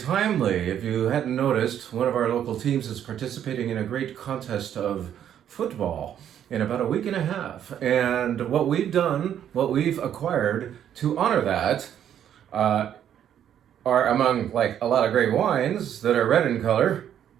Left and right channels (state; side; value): quieter; left; 9.9 dB